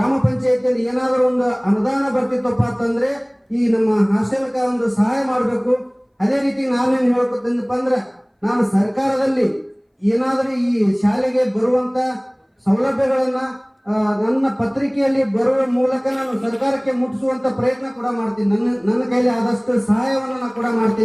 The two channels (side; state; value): both; identical; correlation 1.00